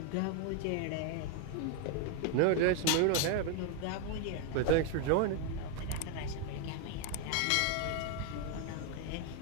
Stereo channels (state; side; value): different; both; correlation 0.01